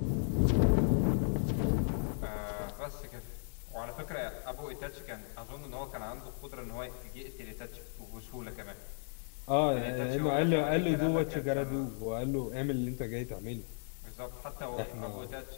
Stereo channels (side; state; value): right; silent; digital silence